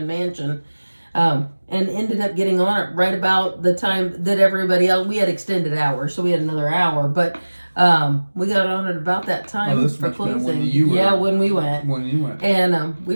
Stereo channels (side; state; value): both; inverted; correlation -1.00